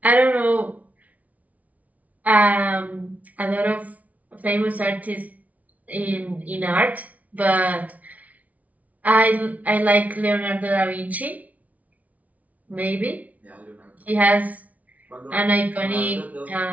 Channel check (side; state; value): left; late; 0.071 ms